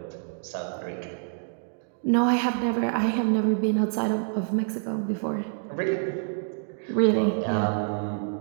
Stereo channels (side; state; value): left; silent; digital silence